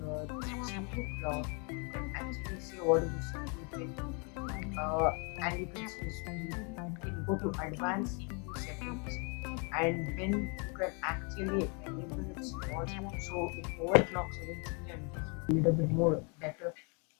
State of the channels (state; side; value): quieter; right; 35.2 dB